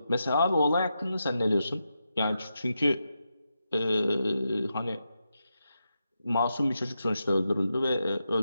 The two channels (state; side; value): inverted; both; correlation -0.87